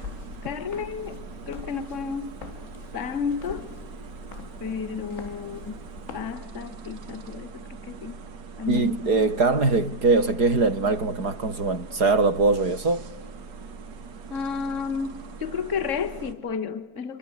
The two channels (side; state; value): left; late; 4.8 ms